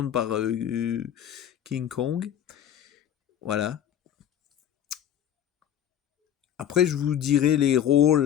par King Kong. Voilà. Après, je vous dirai les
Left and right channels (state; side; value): quieter; right; 10.0 dB